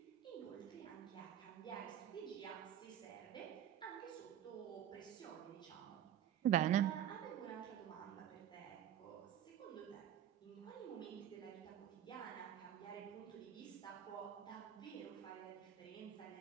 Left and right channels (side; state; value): left; quieter; 10.5 dB